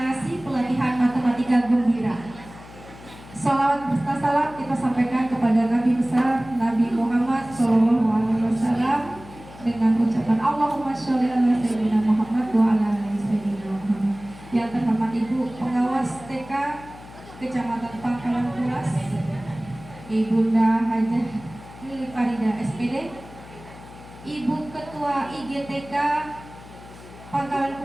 pelatihan matematika gembira. Salawat beserta salam kita sampaikan kepada Nabi besar Nabi Muhammad SAW dengan ucapan Allahumma sholli ala sayyidina Muhammad wa ala ali sayyidina Muhammad. Yang terhormat Ibu Pengawas TK Kecamatan Pangkalan Kuras, Ibunda Hajah Lili Farida SPD, Ibu Ketua IGTK Pangkalan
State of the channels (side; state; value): left; noise; hum, 18 dB below the sound